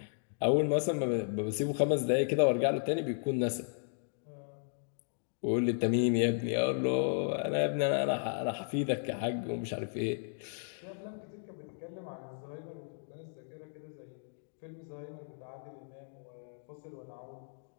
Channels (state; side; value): silent; right; digital silence